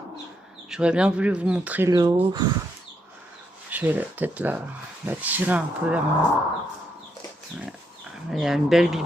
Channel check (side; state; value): both; normal; correlation 0.78